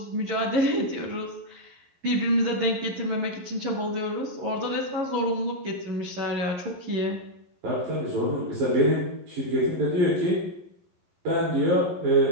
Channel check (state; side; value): late; left; 11 ms